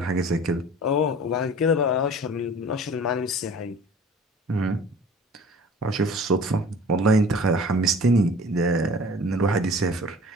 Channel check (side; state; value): both; normal; correlation 0.45